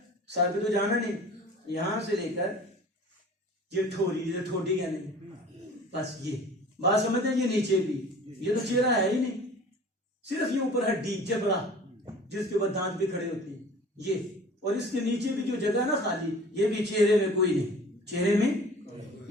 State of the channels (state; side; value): normal; both; correlation 0.45